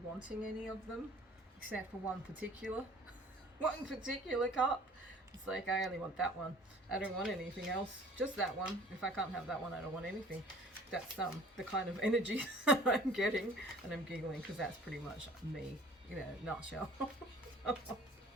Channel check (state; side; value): normal; both; correlation 0.50